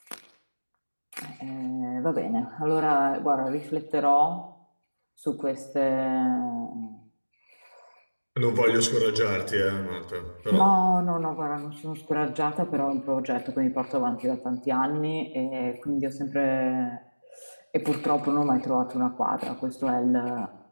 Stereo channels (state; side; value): inverted; both; correlation -1.00